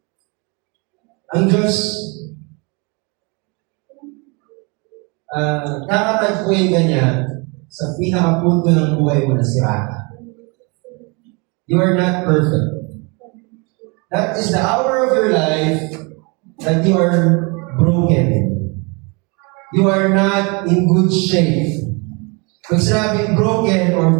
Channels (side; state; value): left; quieter; 30.4 dB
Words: Ang Diyos, kakatagpuin ka niya sa pinakapunto ng buhay mo na sira ka. You are not perfect. That is the hour of your life that you are broken. You are not in good shape. Pag sinabing broken or